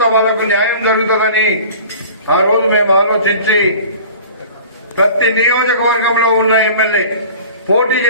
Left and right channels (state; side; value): inverted; both; correlation -0.42